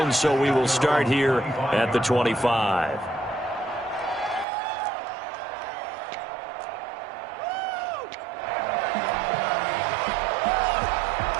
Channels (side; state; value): left; drops out; at 4.5 s